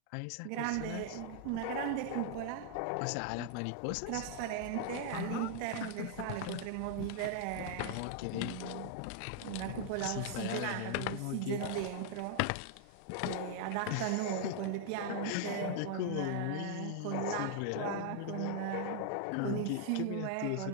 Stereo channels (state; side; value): different; both; correlation 0.00